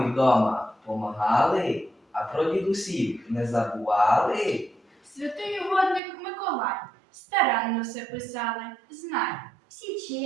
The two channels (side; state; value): left; drops out; at 6.0 s